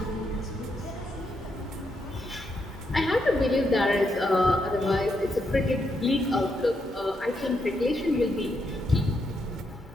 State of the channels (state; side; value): normal; both; correlation 0.80